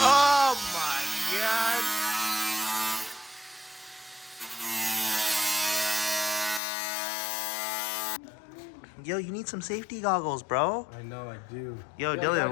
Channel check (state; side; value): drops out; right; at 6.6 s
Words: my god. Yo, you need some safety goggles, bro. I know, I do. Yo, Dylan,